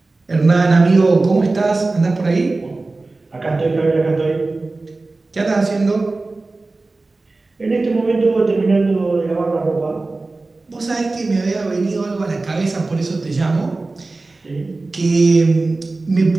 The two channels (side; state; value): left; quieter; 3.4 dB